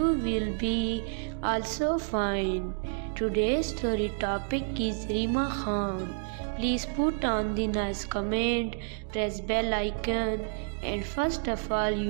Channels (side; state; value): left; silent; digital silence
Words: will be also fine. Today's story topic is Reema Khan. Please put on the nice comment, press bell icon and first of all